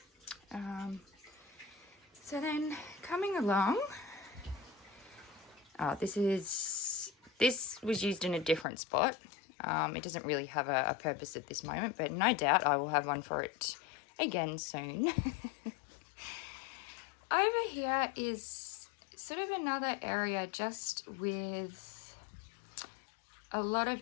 So then coming along, this was used in a different spot. It doesn't really have a purpose at this moment, but no doubt I will have one for it again soon. Over here is sort of another area just with a lot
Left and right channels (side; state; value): right; drops out; at 8.7 s